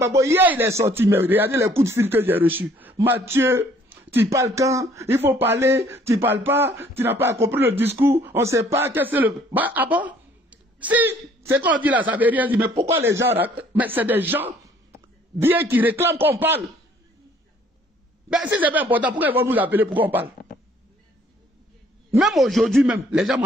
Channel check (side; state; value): both; normal; correlation 0.60